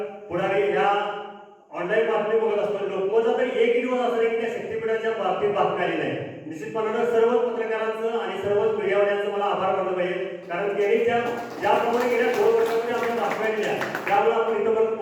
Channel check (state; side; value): identical; both; correlation 1.00